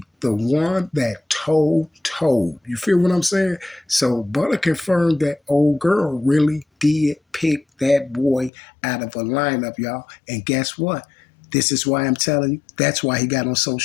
The one that told. You feel what I'm saying? So Butta confirmed that old girl really did pick that boy out of a lineup, y'all. And guess what? This is why I'm telling you, that's why he got on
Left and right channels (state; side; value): drops out; right; at 8.5 s